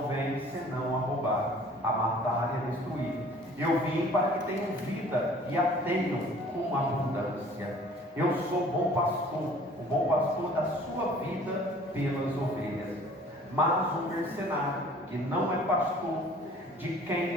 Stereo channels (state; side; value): normal; both; correlation 0.51